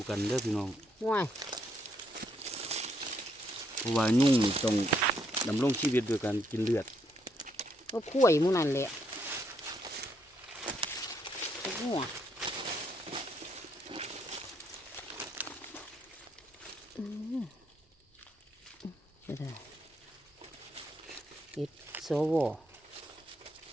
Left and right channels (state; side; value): normal; both; correlation 0.74